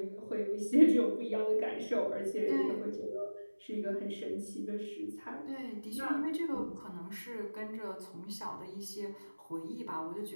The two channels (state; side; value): inverted; both; correlation -1.00